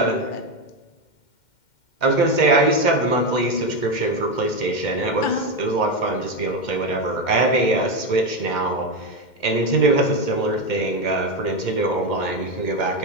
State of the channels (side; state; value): right; late; 2.1 ms